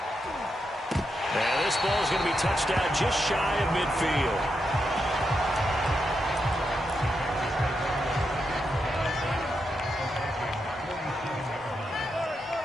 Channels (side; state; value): both; normal; correlation 0.84